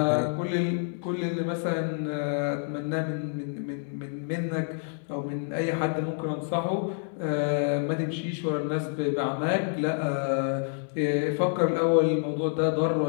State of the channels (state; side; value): silent; right; digital silence